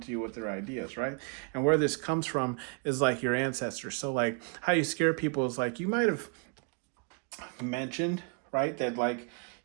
to you with their ideas, right? And where this comes from is like your ancestors. So like how you scare people is like you might have mentioned, right, that like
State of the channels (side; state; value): left; quieter; 35.8 dB